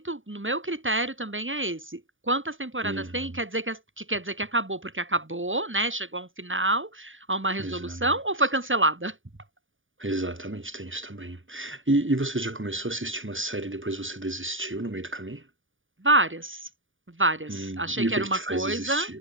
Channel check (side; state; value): left; late; 0.57 ms